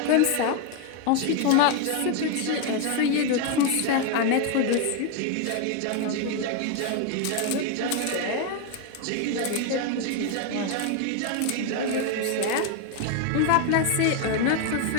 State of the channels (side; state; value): both; different; correlation 0.01